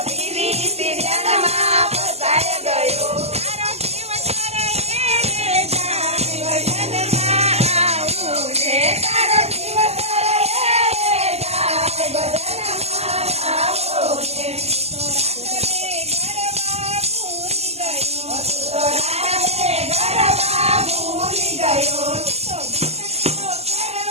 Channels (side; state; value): left; late; 0.30 ms